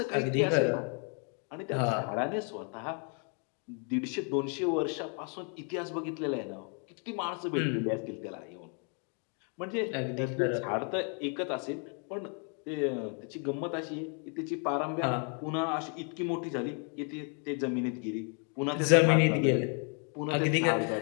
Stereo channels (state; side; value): quieter; right; 39.8 dB